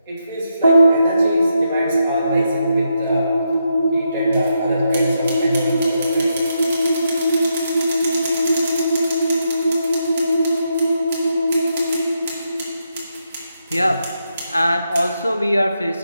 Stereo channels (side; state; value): both; inverted; correlation -0.82